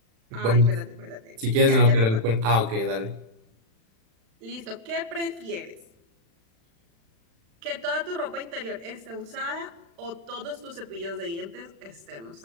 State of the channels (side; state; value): left; late; 35 ms